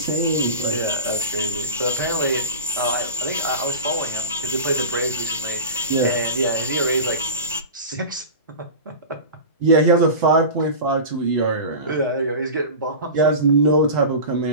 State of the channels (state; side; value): inverted; both; correlation -0.30